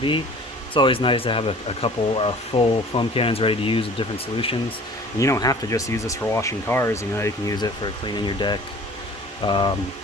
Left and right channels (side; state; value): both; normal; correlation 0.47